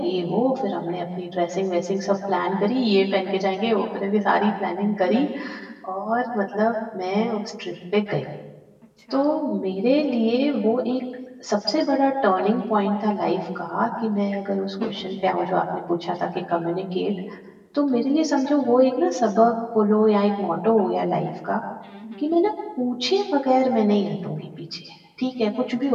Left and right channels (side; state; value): both; identical; correlation 1.00